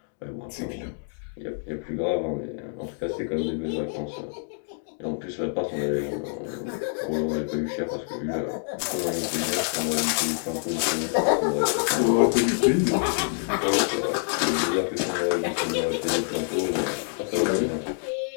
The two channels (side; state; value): right; silent; digital silence